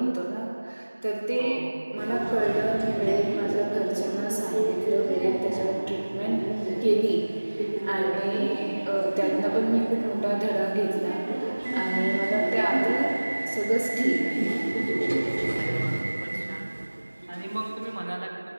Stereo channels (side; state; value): both; inverted; correlation -1.00